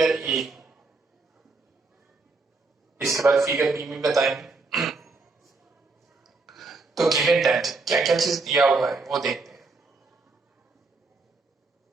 ए, इसके बाद फिगर बी में बताएंगे। तो गिवन दैट क्या क्या चीज दिया हुआ है वो देखते हैं।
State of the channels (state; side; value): quieter; left; 3.8 dB